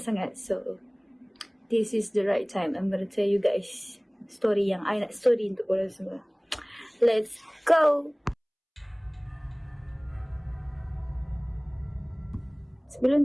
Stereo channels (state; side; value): identical; both; correlation 1.00